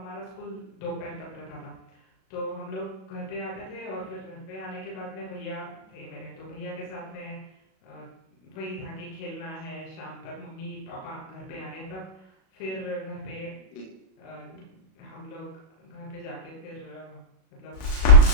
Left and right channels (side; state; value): right; late; 37 ms